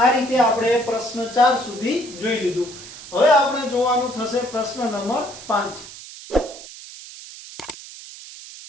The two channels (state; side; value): noise; right; hiss, 15 dB below the sound